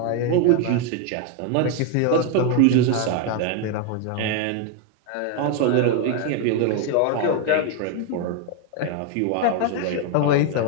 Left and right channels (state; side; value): different; both; correlation 0.01